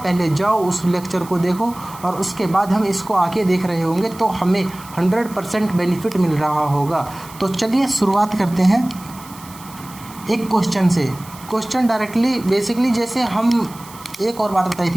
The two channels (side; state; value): right; noise; hiss, 19 dB below the sound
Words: जाओ उस लेक्चर को देखो और उसके बाद हम इसको आगे देख रहे होंगे, तो हमें 100% बेनिफिट मिल रहा होगा। तो चलिए शुरुआत करते हैं एक क्वेश्चन से। क्वेश्चन डायरेक्टली बेसिकली, जैसे हम एक और बात बताई